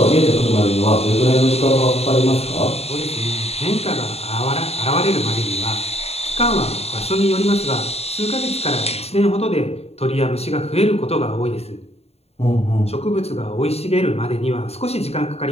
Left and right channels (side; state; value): right; late; 0.30 ms